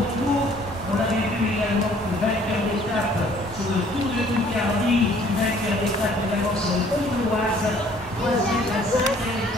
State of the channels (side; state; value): both; normal; correlation 0.58